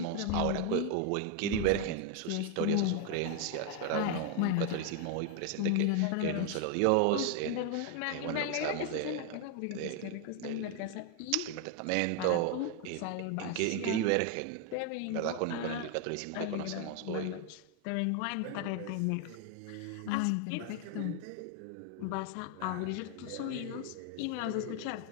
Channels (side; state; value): both; different; correlation 0.01